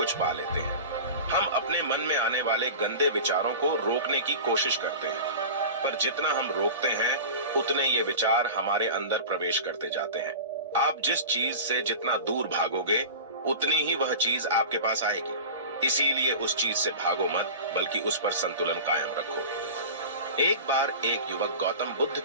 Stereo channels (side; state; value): both; inverted; correlation -0.33